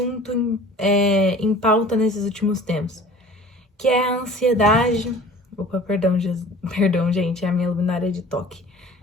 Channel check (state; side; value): normal; both; correlation 0.45